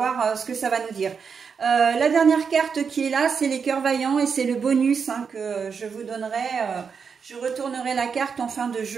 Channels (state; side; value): quieter; left; 6.1 dB